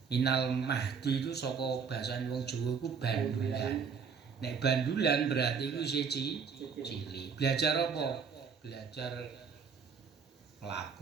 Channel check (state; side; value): quieter; left; 6.1 dB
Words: Minal mahdi itu saka basa wong Jawa iku bandulan. Nek bandulan berarti iku isih cilik. Belajar apa? Belajar